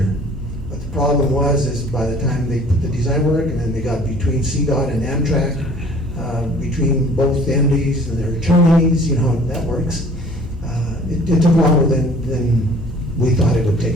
but the problem is by the time they put the design work and then they got between CDOT and Amtrak, between both the entities and their attorneys, you know how that works. It took longer than we thought it would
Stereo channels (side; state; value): both; normal; correlation 0.51